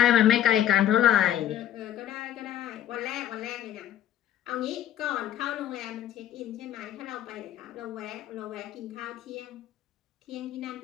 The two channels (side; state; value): right; quieter; 11.7 dB